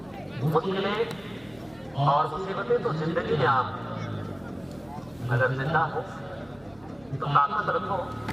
मुश्किलें और मुसीबतें तो जिंदगी में आम, अगर जिंदा हो तो ताकत रखो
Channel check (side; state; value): right; noise; hum, 26 dB below the sound